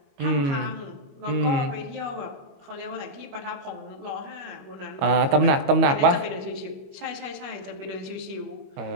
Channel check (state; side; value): late; left; 22 ms